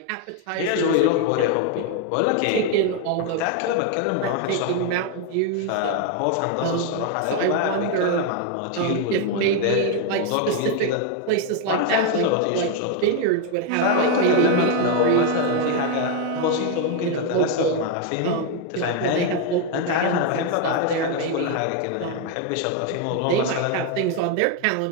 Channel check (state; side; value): different; both; correlation 0.01